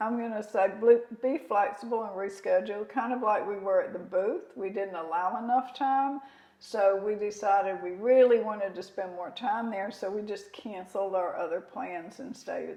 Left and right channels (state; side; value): identical; both; correlation 1.00